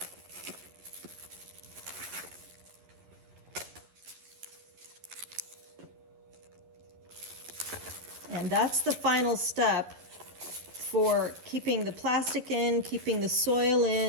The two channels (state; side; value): late; left; 11 ms